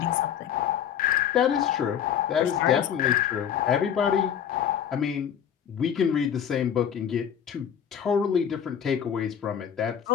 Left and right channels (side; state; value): right; quieter; 8.8 dB